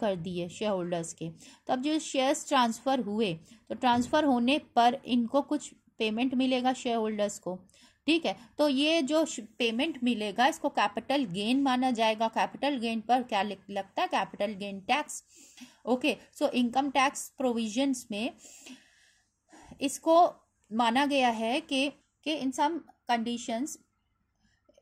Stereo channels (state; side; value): identical; both; correlation 1.00